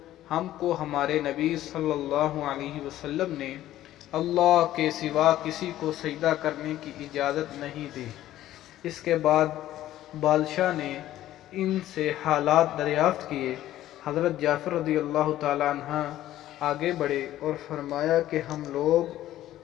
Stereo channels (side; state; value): right; quieter; 13.7 dB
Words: ہم کو ہمارے نبی صلی اللہ علیہ وسلم نے اللہ کے سوا کسی کو سجدہ کرنے کی اجازت نہیں دی۔ اس کے بعد بادشاہ نے ان سے حالات دریافت کیے۔ حضرت جعفر رضی اللہ تعالیٰ عنہ آگے بڑھے اور فرمایا کہ ہم لوگ